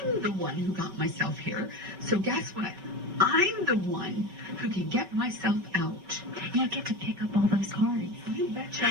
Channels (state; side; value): late; left; 5.3 ms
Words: the one who got myself here. So guess what? I'm the one who can get myself out. You get to pick up all those cards. You